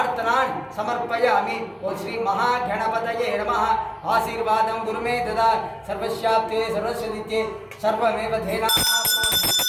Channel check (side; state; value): both; identical; correlation 1.00